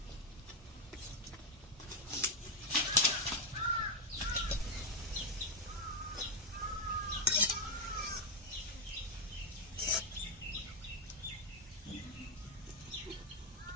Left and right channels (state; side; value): normal; both; correlation 0.02